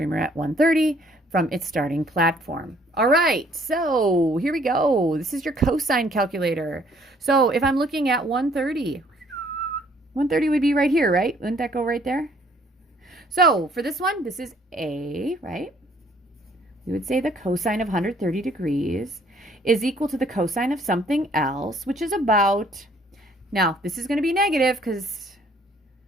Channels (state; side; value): normal; both; correlation 0.62